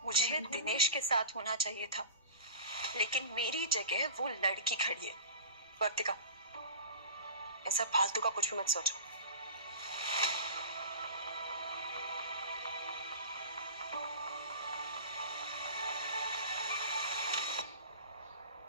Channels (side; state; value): both; inverted; correlation -0.36